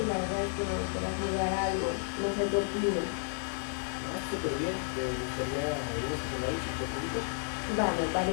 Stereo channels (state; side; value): silent; right; digital silence